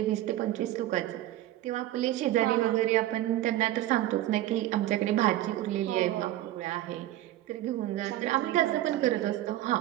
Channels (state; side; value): quieter; left; 14.6 dB